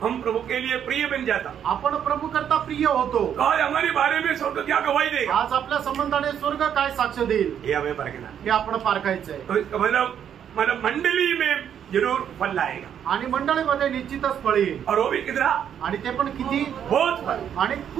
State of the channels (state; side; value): quieter; left; 9.0 dB